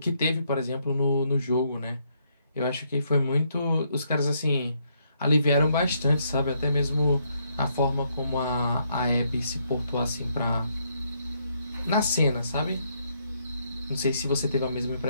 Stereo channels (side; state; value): both; inverted; correlation -0.73